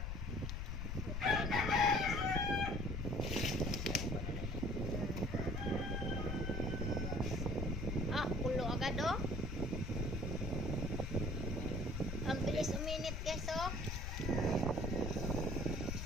Agad oh. Ang bilis uminit guys oh.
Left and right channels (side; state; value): left; noise; rumble, 2 dB below the sound